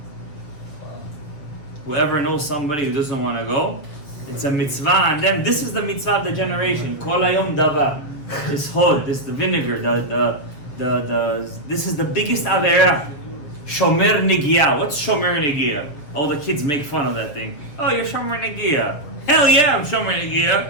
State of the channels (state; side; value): late; right; 7.2 ms